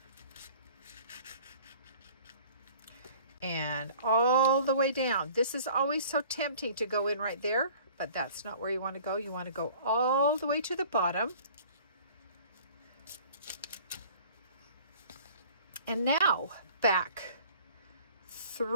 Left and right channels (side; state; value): both; inverted; correlation -0.49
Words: and all the way down. This is always so tempting to go in right there, but that's not where you want to go. You want to go all the way to the bottom. And now back